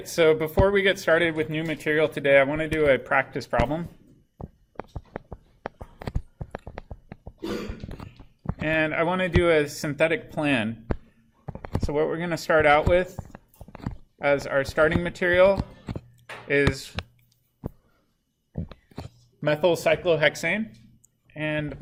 so before we get started with new material today, I want to do a practice problem. And I want to do a synthetic plan. So what we're going to start out with as our starting material is methyl cyclohexane. And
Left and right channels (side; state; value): both; identical; correlation 1.00